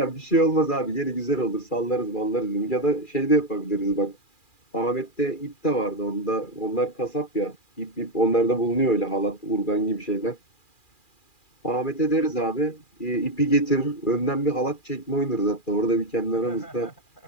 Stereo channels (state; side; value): late; right; 2.4 ms